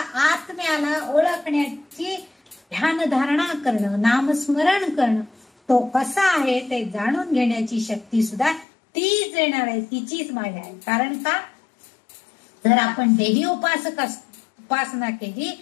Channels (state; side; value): drops out; right; at 8.7 s